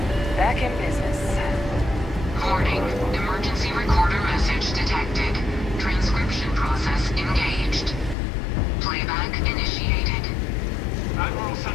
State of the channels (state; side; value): drops out; right; at 8.2 s